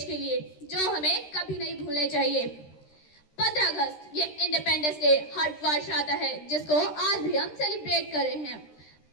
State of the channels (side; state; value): right; late; 13 ms